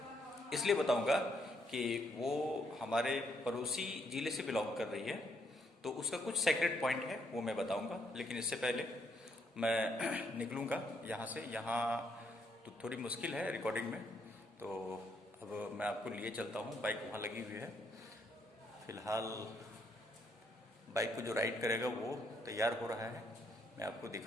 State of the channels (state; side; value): normal; both; correlation 0.73